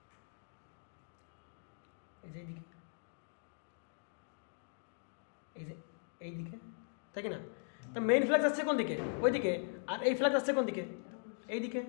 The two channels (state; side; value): silent; right; digital silence